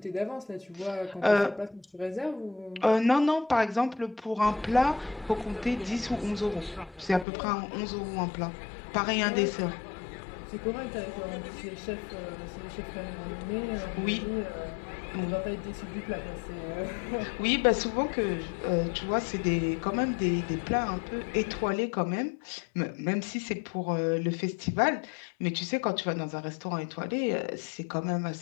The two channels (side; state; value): right; drops out; at 7.2 s